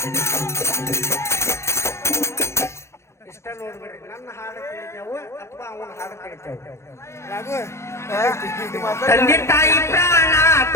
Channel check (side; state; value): right; late; 0.13 ms